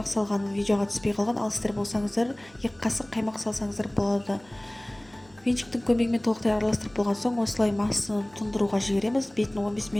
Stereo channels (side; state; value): right; noise; hum, 28 dB below the sound